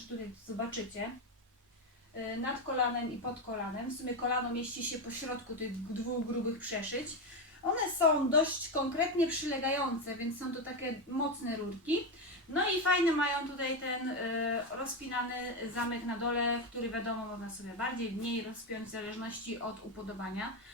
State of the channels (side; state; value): both; normal; correlation 0.12